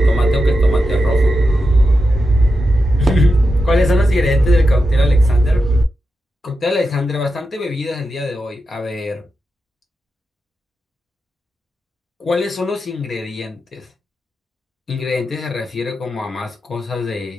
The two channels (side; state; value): both; normal; correlation 0.89